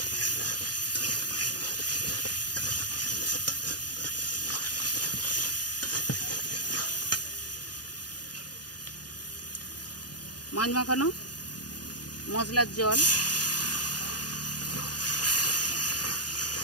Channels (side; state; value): right; late; 0.69 ms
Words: মাছ মাখানো মশলার জল,